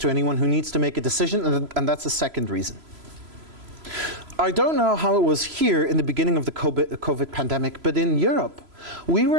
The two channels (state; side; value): late; left; 3.0 ms